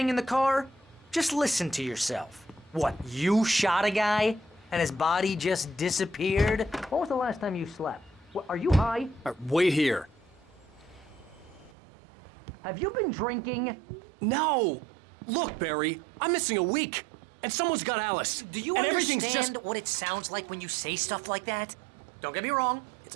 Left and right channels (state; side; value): drops out; left; at 11.7 s